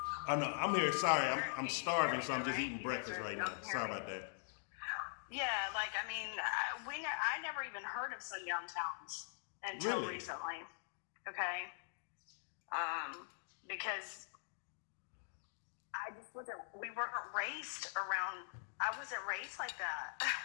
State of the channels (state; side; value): silent; right; digital silence